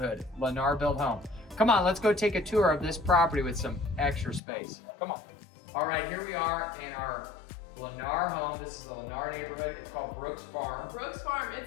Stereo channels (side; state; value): right; drops out; at 4.4 s